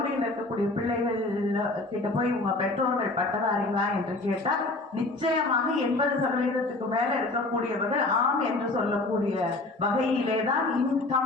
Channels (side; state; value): right; quieter; 3.0 dB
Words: இருக்கக்கூடிய பிள்ளைகள் கிட்ட போய் உங்க பெற்றோர்கள் பட்டதாரிகளா என்று கேட்டால் நிச்சயமாக 80% மேல இருக்கக்கூடியவர்கள் ஆம் என்று சொல்லக்கூடிய வகையிலேதான்